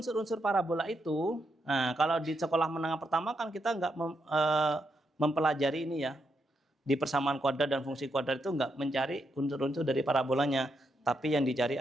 parabola itu? Nah, kalau di sekolah menengah pertama kan kita nggak mempelajari ini ya. Di persamaan kuadrat dan fungsi kuadrat itu nggak mencari unsur-unsur dari parabolanya, tapi yang dicari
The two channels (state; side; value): normal; both; correlation 0.81